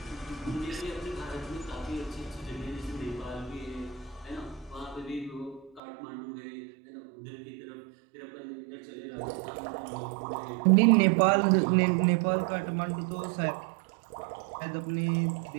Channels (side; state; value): left; drops out; at 5.8 s